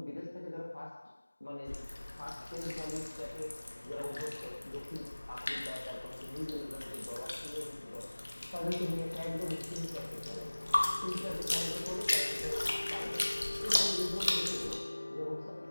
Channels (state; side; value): inverted; both; correlation -1.00